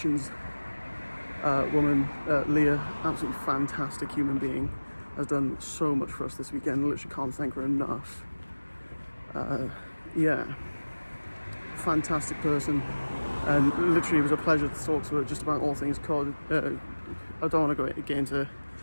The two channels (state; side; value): inverted; both; correlation -1.00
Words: woman, Leah. Absolutely fantastic human being, has done so much for us this weekend. Literally can't thank her enough. Yeah, fantastic person, and literally it was a pleasure to talk to her just about all things COD. I don't want to get into